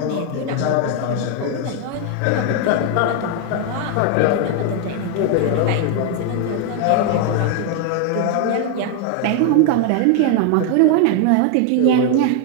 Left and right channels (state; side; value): different; both; correlation 0.00